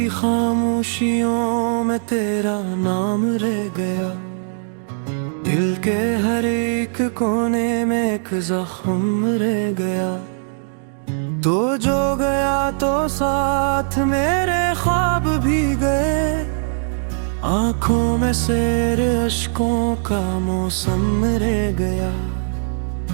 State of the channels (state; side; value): silent; left; digital silence